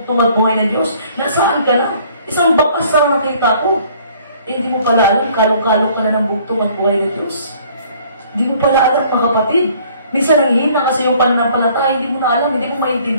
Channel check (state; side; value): inverted; both; correlation -0.57